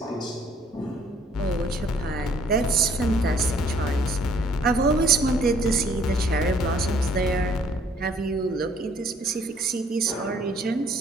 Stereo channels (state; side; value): normal; both; correlation 0.61